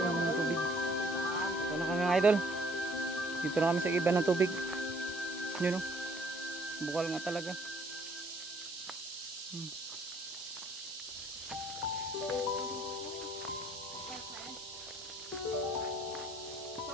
tubig. Ito na kami mga idol. Dito na kami sa iba ng tubig. Yun o. Bukal nga talaga.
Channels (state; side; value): normal; both; correlation 0.61